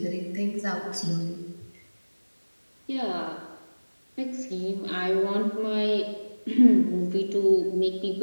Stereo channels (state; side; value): inverted; both; correlation -1.00